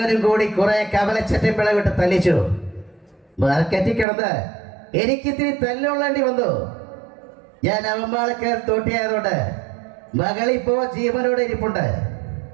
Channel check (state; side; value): drops out; left; at 4.0 s